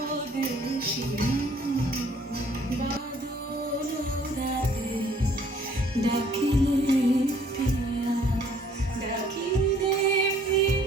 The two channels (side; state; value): both; normal; correlation 0.60